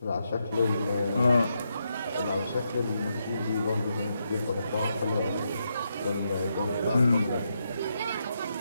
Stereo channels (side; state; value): both; inverted; correlation -0.82